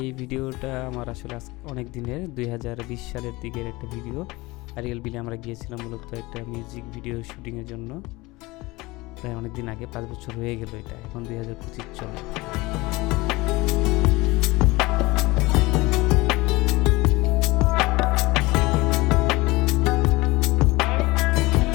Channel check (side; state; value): right; quieter; 21.9 dB